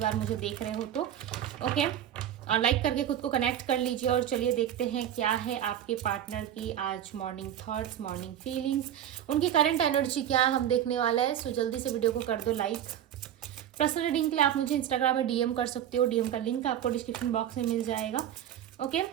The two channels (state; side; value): quieter; left; 10.6 dB